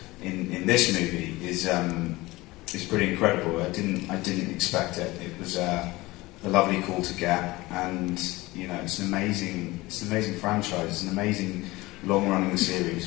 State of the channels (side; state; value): right; quieter; 20.4 dB